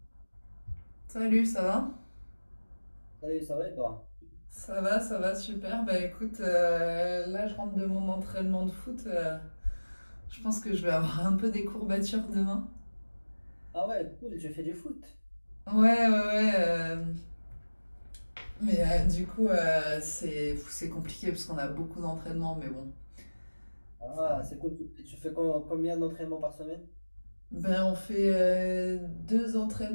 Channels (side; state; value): both; inverted; correlation -1.00